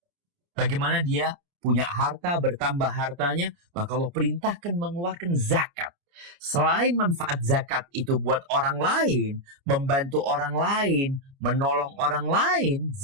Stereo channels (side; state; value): left; late; 29 ms